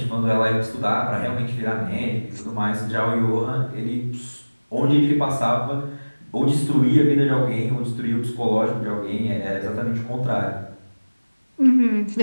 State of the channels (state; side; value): inverted; both; correlation -1.00